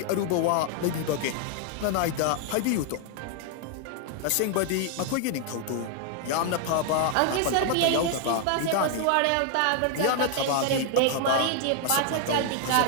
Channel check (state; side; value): different; both; correlation 0.00